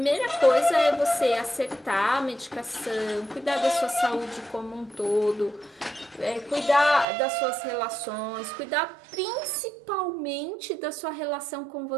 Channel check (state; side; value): drops out; left; at 7.1 s